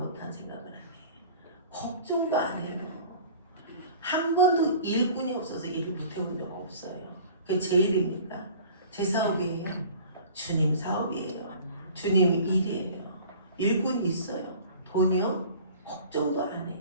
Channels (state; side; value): inverted; both; correlation -0.45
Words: 생각을 안 해요. 걱정도 안 해요. 한 번도 일꾼이 없어서 일을 못해본 적 없어요. 그게 제 일입니까? 제 사업이에요. 주님 사업이에요. 주님 일이에요. 일꾼이 있어요. 돈이요? 걱정도 안